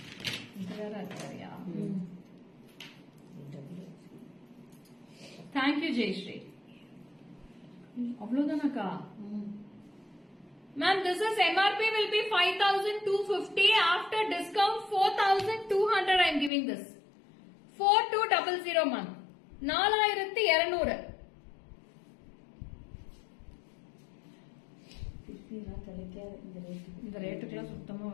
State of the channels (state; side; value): drops out; right; at 16.5 s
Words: Thank you, Jayashree. அவ்வளவுதானக்கா? Ma'am, this is MRP will be 5250. After discount 4200 I am giving this. 4200 ma'am. 4200. இந்த ரேட்டுக்குலாம் சுத்தமா